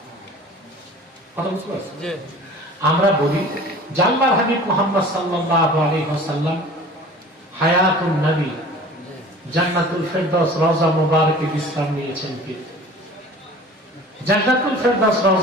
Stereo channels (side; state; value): both; normal; correlation 0.43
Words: কথা বুঝতে পারছেন? আমরা বলি যে আল্লাহর হাবিব মুহাম্মদ সাল্লাল্লাহু আলাইহি ওয়াসাল্লাম হায়াতুন নবী জান্নাতুল ফেরদাউস রওজা মুবারকে বিশ্রাম নিয়েছেন কি? জান্নাতুল ফেরদাউস